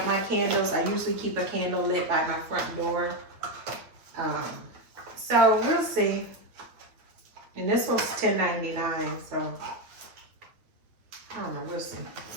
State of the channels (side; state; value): left; late; 8.9 ms